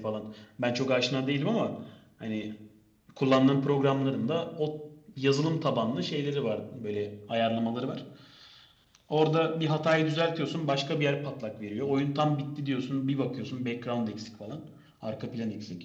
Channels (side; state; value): both; identical; correlation 1.00